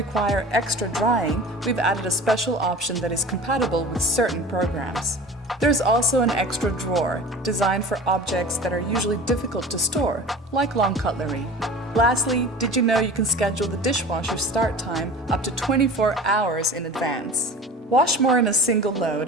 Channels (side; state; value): both; normal; correlation 0.39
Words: extra drying, we've added a special option that is compatible with certain programs. There's also an extra drawer, designed for objects that are usually difficult to store, like long cutlery. Lastly, did you know you can schedule the dishwasher start time up to 24 hours in advance? Wash more in a single load